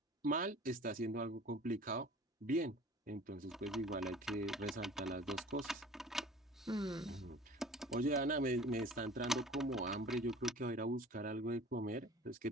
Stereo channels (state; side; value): normal; both; correlation 0.45